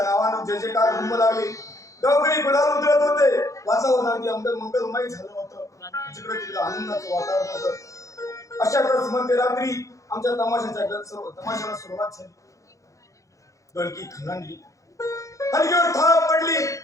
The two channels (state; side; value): late; right; 0.15 ms